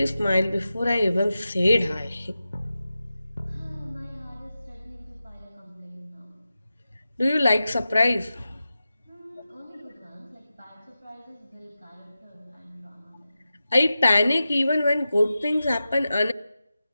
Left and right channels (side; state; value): both; inverted; correlation -0.93